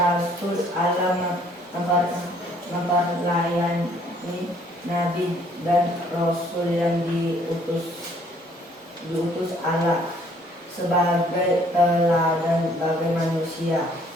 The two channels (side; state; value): both; normal; correlation 0.62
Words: Allah memperlayani Nabi dan Rasul yang diutus Allah sebagai teladan bagi manusia.